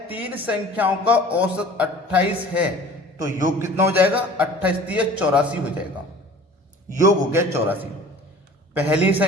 3 संख्याओं का औसत 28 है, तो योग कितना हो जाएगा? 28 तिया 84 हो जाएगा। योग हो गया 84। पहली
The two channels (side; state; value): both; normal; correlation 0.45